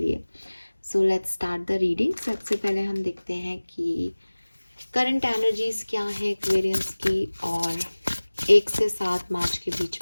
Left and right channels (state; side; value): inverted; both; correlation -1.00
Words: So let's start the reading. सबसे पहले हम देखते हैं कि करंट एनर्जीज क्या है एक्वेरियंस की, और 1 से 7 मार्च के